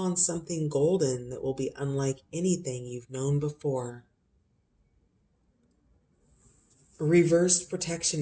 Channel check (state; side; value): identical; both; correlation 1.00